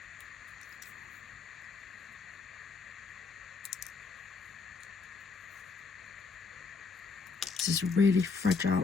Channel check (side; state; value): right; quieter; 4.8 dB